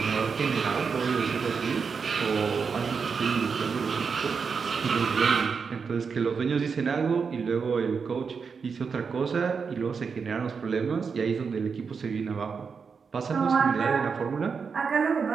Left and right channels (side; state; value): left; quieter; 5.7 dB